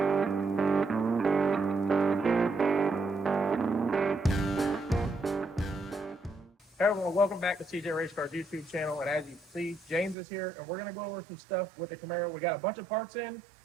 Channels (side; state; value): left; drops out; at 10.2 s